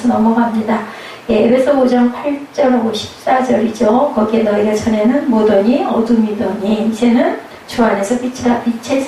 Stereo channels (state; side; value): identical; both; correlation 1.00